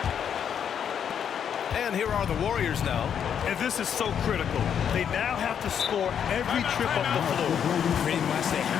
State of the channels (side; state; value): right; quieter; 8.3 dB